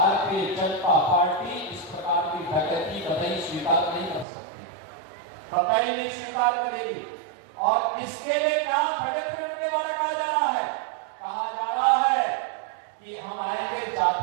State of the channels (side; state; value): left; drops out; at 4.2 s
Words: जनता पार्टी इस प्रकार की डकैती कतई स्वीकार नहीं कर सकती, कतई नहीं स्वीकार करेगी। और इसके लिए क्या षड्यंत्र के द्वारा कहा जा रहा है, कहा जा रहा है कि हम आएंगे